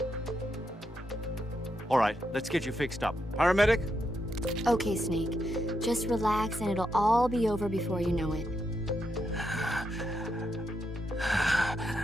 All right, let's get you fixed up. Paramedic? Okay, Snake. Just relax and it'll all be over before you know it.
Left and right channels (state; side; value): normal; both; correlation 0.82